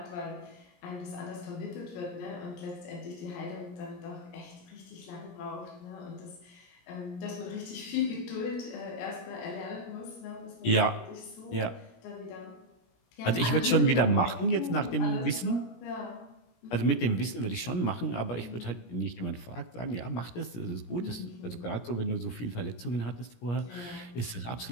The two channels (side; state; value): right; late; 17 ms